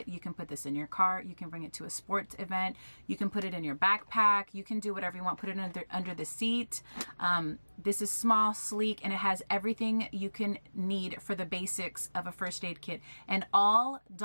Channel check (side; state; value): both; inverted; correlation -1.00